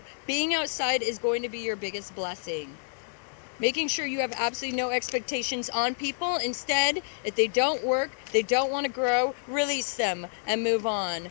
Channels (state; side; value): silent; right; digital silence